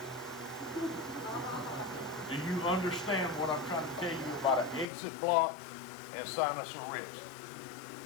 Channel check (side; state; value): right; drops out; at 4.9 s